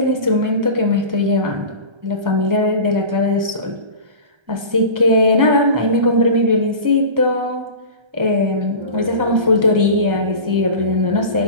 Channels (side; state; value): left; late; 1.3 ms